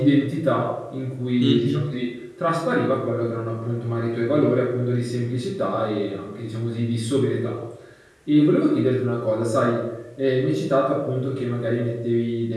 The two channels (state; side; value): identical; both; correlation 1.00